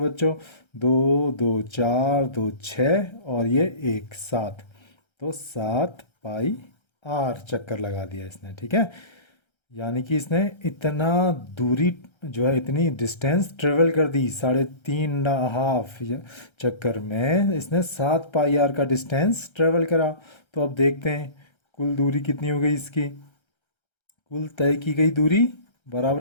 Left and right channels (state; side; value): late; right; 1.3 ms